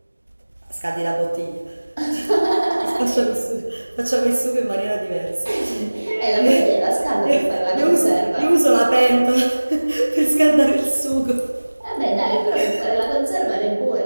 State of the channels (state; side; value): inverted; both; correlation -1.00